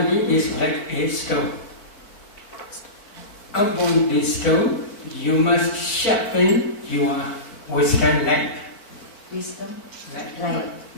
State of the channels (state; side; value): late; right; 4.6 ms